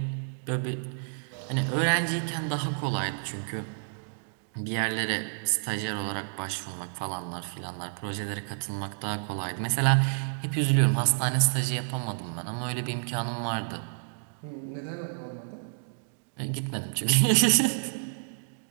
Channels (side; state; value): left; silent; digital silence